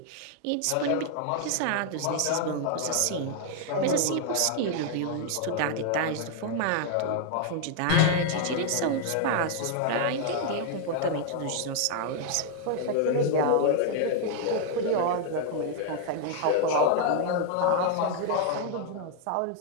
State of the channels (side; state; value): both; different; correlation 0.00